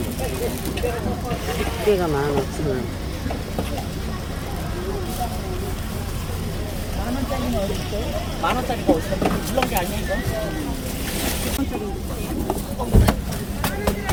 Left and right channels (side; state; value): both; identical; correlation 1.00